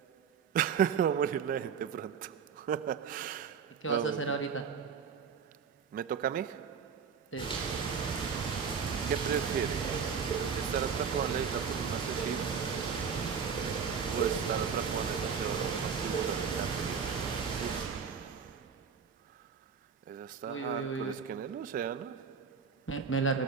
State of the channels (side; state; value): left; quieter; 6.6 dB